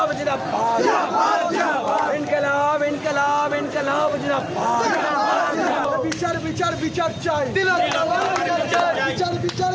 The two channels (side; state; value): both; identical; correlation 1.00